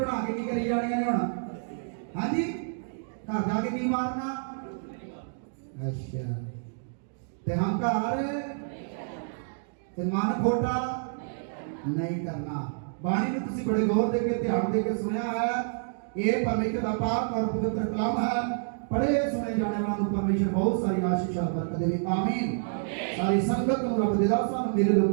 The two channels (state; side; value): silent; left; digital silence